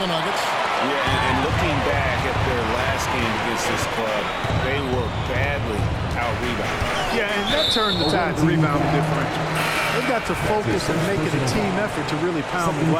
Nuggets. Yeah, and looking back at their last game against this club, they were badly out-rebounded. Yeah, and that turned the tide to rebounding differential. They've got to focus and make it a team effort to really pound the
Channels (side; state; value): both; identical; correlation 1.00